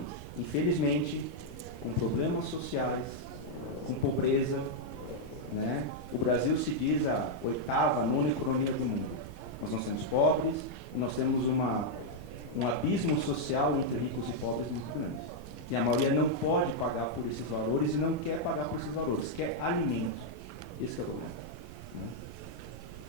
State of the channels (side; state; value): right; noise; rumble, 13 dB below the sound